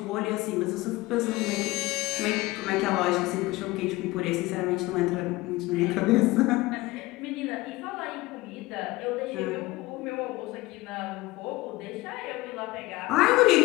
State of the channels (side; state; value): right; quieter; 20.2 dB